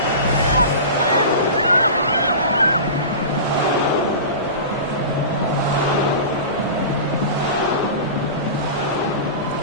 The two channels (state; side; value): inverted; both; correlation -0.31